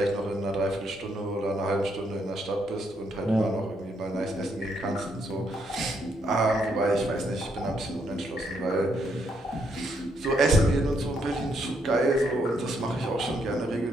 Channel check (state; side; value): normal; both; correlation 0.75